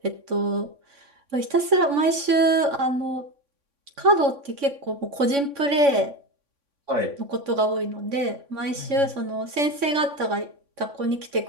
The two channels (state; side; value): late; left; 3.6 ms